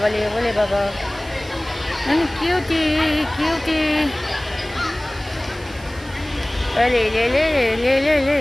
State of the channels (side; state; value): right; noise; hiss, 21 dB below the sound